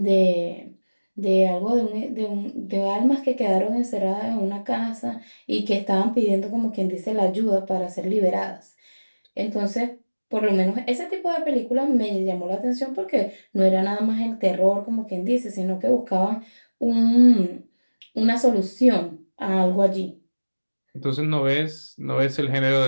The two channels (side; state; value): both; inverted; correlation -1.00